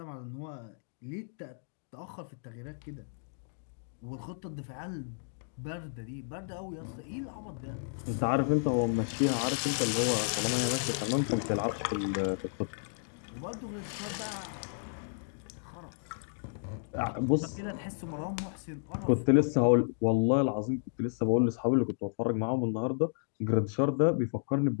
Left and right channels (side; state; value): right; silent; digital silence